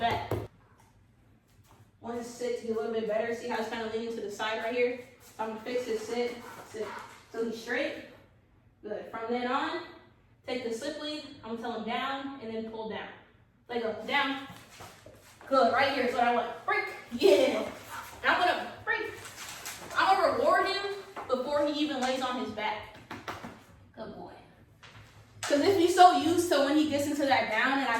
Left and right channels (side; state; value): both; identical; correlation 1.00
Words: Want his sit to be a little bit better. See how it's kind of leaning to the side right here? So I'm going to fix his sit. So he's straight. Good. From then on, take the slip lead. I'm going to tell him down and then pull down. Let go. Down. Good. Right here is what I want. Break. Yeah. Now I'm going to break. I'm going to reward him before he even lays on his back. Good boy. Because if he's so used to when he gets into that down and